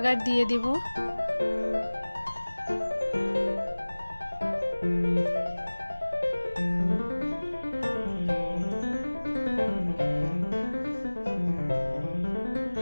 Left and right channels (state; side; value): inverted; both; correlation -1.00